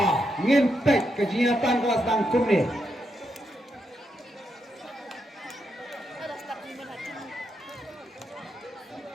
ngintek kegiatan kelas tangkum ni.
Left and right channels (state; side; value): normal; both; correlation 0.82